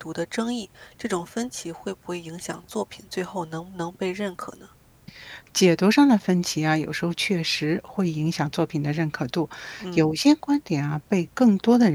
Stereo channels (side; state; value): both; identical; correlation 1.00